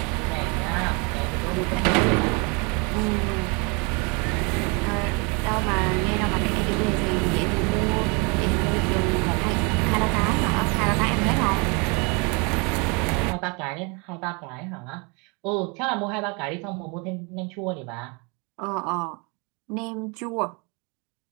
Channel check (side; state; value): left; quieter; 31.4 dB